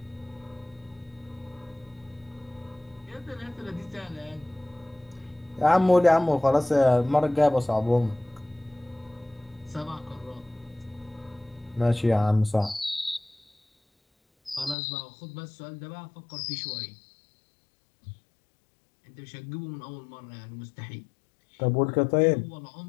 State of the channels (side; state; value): right; drops out; at 14.8 s